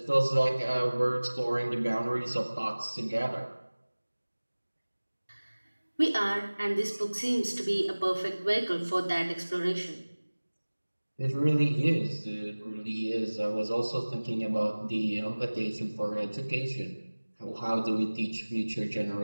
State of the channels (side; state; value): both; inverted; correlation -1.00